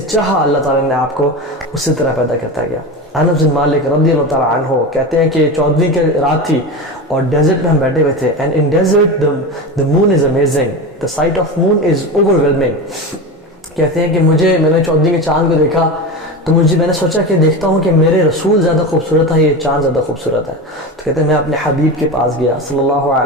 چاہا اللہ تعالیٰ نے آپ کو اسی طرح پیدا کرتا گیا. انس بن مالک رضی اللہ تعالیٰ عنہ کہتے ہیں کہ 14ویں کی رات تھی اور ڈیزرٹ میں ہم بیٹھے ہوئے تھے. And in desert the moon is amazing, the sight of moon is overwhelming. کہتے ہیں کہ میں نے 14ویں کے چاند کو دیکھا تو میں نے سوچا کہ دیکھتا ہوں کہ میرے رسول زیادہ خوبصورت ہے، یہ چاند زیادہ خوبصورت ہے. تو کہتے ہیں میں اپنے حبیب کے پاس گیا صلی اللہ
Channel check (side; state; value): both; normal; correlation 0.24